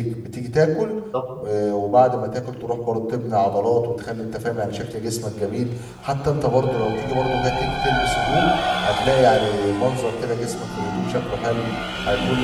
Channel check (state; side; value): identical; both; correlation 1.00